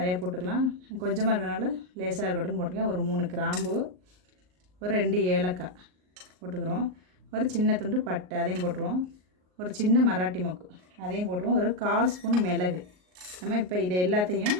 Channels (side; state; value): left; late; 38 ms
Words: போட்டுக்கலாம். கொஞ்சமாக இருக்கிறனால லேசாக இருக்கட்டும்னு போட்டுருக்கேன். ஒரு 3 கிராம்பு, ஒரு 2 ஏலக்காய் போட்டுக்கிறோம். ஒரு சின்ன துண்டு பட்டை, அதையும் போட்டுருவோம். ஒரு சின்ன மராட்டி மொக்கு, அதையும் போட்டுருவோம். ஒரு 1/4 ஸ்பூன் மிளகு. நம்ம இப்போ இதை எல்லாத்தையும்